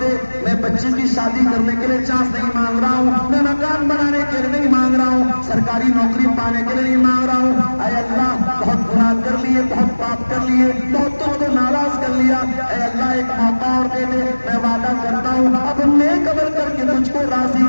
میں بچی کی شادی کرنے کے لیے چانس نہیں مانگ رہا ہوں، میں مکان بنانے کے لیے نہیں مانگ رہا ہوں، سرکاری نوکری پانے کے لیے نہیں مانگ رہا ہوں۔ اے اللہ بہت گناہ کر لیے، بہت پاپ کر لیے، بہت تم کو ناراض کر لیا، اے اللہ ایک موقع اور دے دے، میں وعدہ کرتا ہوں اب نیک عمل کر کے تجھ کو راضی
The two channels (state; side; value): inverted; both; correlation -1.00